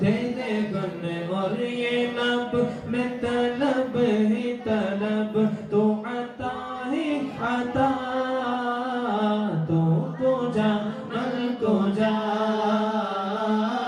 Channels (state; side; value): identical; both; correlation 1.00